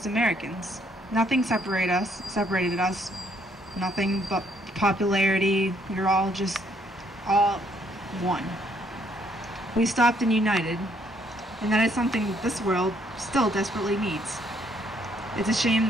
Americans. Nothing separated us, nothing but popularity. We were all just all one. We stopped and united, and that is something this world still desperately needs. It's a shame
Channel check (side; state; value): both; normal; correlation 0.68